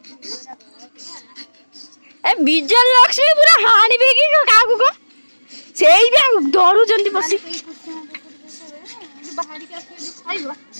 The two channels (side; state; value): both; inverted; correlation -1.00